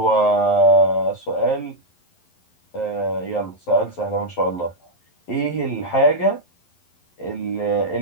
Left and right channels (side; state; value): right; late; 11 ms